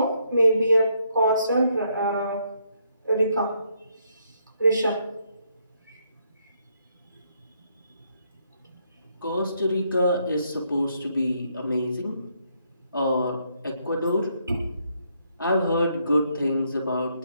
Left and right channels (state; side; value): inverted; both; correlation -0.74